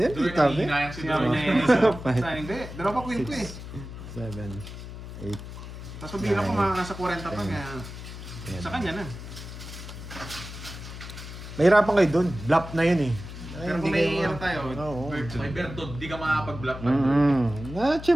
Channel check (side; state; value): left; noise; hum, 11 dB below the sound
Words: Duroy, Tabi. nangihinayang si Sinabi Duroy. niya sa hindi. Dalawa pa queen ko eh. 7, 8. Tapos pabila ko mga nasa 40 pa kaya sa kanya na. Mahirapan kayo dun. Bluff na yun eh. Ay, Pero hindi kung may kayo- ano tayo, Oo. May Bertod, di ka makapag-block na.